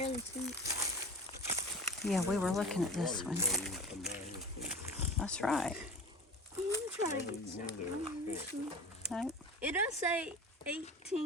see it. Yeah, we were looking at this one. That's right. I'm trying to get something. Right. It does say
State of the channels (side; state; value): both; normal; correlation 0.35